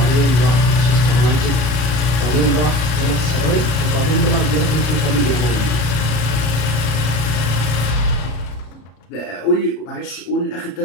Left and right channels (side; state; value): right; late; 33 ms